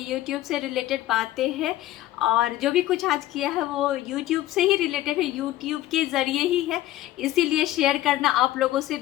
यूट्यूब से रिलेटेड बातें हैं और जो भी कुछ आज किया है वो यूट्यूब से ही रिलेटेड है, यूट्यूब के ज़रिए ही है। इसीलिए शेयर करना आप लोगों से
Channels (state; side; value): quieter; right; 14.7 dB